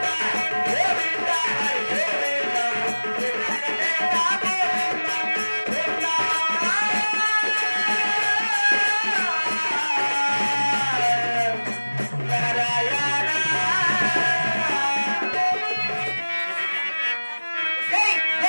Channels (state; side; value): inverted; both; correlation -1.00